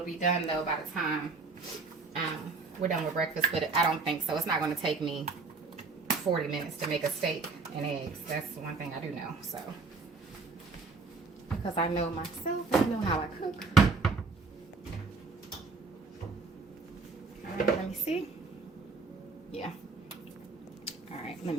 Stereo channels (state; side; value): quieter; left; 4.2 dB